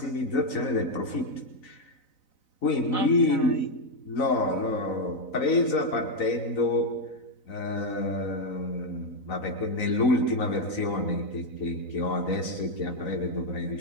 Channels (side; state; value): right; late; 4.0 ms